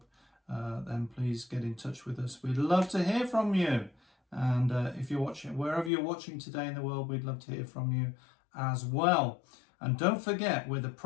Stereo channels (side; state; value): right; drops out; at 5.9 s